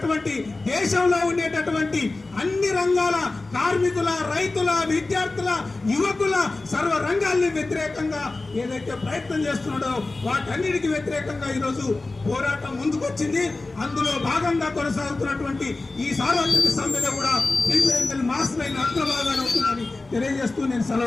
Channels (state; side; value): quieter; right; 3.3 dB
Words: దేశంలో ఉండేటటువంటి అన్ని రంగాల కార్మికుల, రైతుల, విద్యార్థుల, యువకుల సర్వ రంగాల్ని వ్యతిరేకంగా ఏదైతే ప్రయత్నం చేస్తున్నాడో వాటన్నిటికీ వ్యతిరేకంగా ఈరోజు పోరాటం ముందుకొచ్చింది. అందులో భాగంగా కొనసాగుతున్నటువంటి ఈ సార్వత్రిక సమ్మెలో కూడా సిపిఐ మాస్ లైన్ అగ్రభాగాన్ని అవుతుందని తెలియజేస్తూ నేను